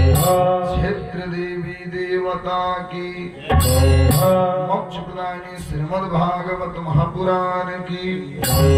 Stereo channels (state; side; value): identical; both; correlation 1.00